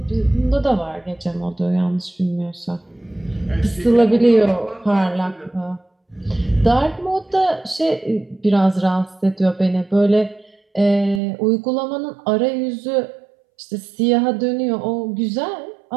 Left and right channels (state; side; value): drops out; left; at 11.2 s